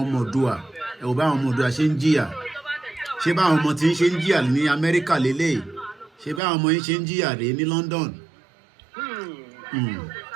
ọmọ Oòduà, ẹ wò báwọn ọmọ Oòduà ṣe ń jìyà. Ṣé báwọn ọmọ tí ń ṣe ń jìyà ní Amẹ́ríkà lélẹ̀? Ṣé báwọn ọmọ yín ṣe ń jìyà rèé ní London?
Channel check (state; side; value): drops out; left; at 6.4 s